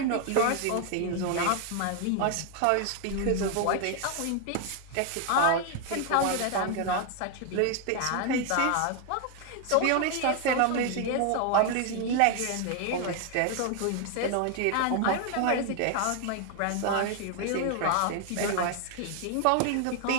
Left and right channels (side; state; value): both; different; correlation 0.00